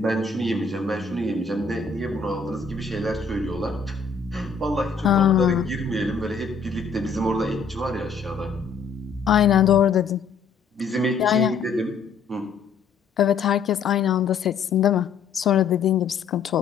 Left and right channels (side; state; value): right; quieter; 5.3 dB